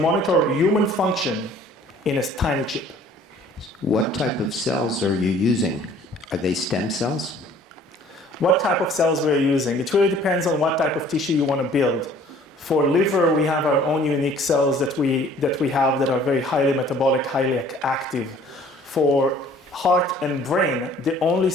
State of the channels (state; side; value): normal; both; correlation 0.53